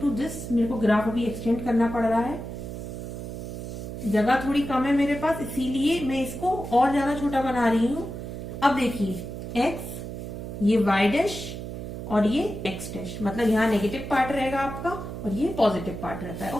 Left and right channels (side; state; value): right; noise; hum, 8 dB below the sound